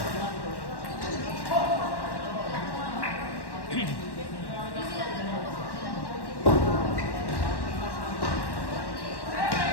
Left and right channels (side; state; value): right; late; 1.1 ms